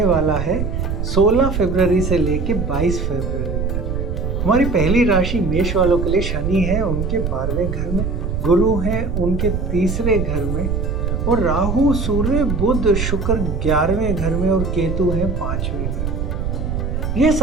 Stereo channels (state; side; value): noise; right; rumble, 1 dB below the sound